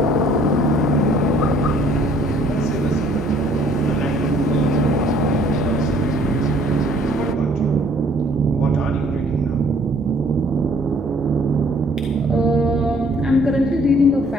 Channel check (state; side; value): normal; both; correlation 0.59